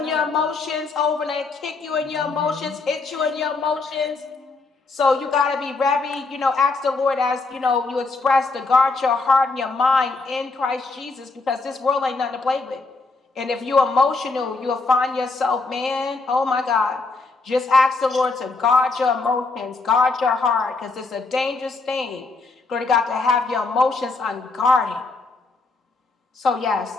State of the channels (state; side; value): quieter; right; 3.8 dB